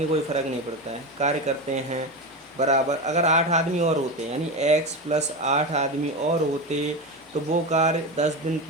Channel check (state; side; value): normal; both; correlation 0.19